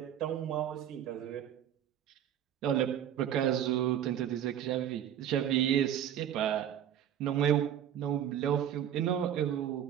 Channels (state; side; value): quieter; left; 10.2 dB